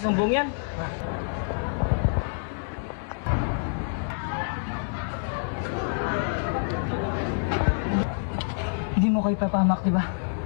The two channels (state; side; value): silent; right; digital silence